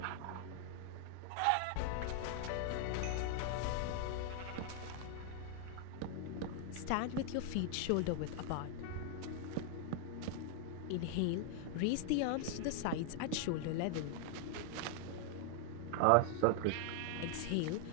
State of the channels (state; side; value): different; both; correlation 0.00